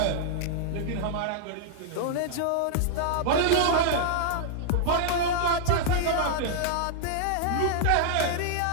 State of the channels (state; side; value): different; both; correlation -0.01